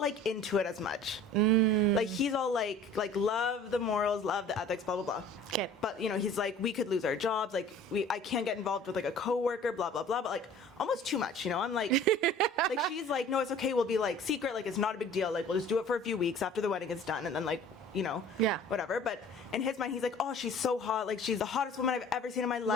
into it as much. Like, he's all like love the morals, love the ethics, blah blah blah. Okay. But he's like, we could lose our jobs, like I can't get involved with like a coworker, blah blah blah, but like almost too much, I'm like, like, she's like, no, it's okay, we'll be like secret, like it's not a big deal, like we'll just do it for a few weeks after the wedding is done, and then like, whatever. But in his mind, he's like, oh, she's so hot, like she's the hottest woman I've ever seen in my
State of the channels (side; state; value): both; normal; correlation 0.47